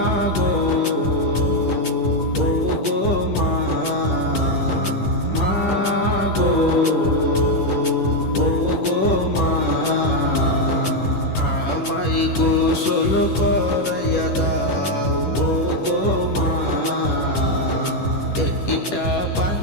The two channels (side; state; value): right; late; 10 ms